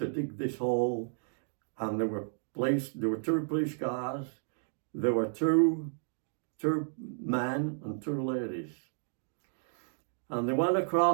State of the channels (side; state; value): left; silent; digital silence